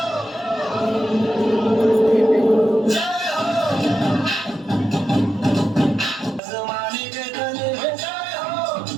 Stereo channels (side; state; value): left; drops out; at 6.4 s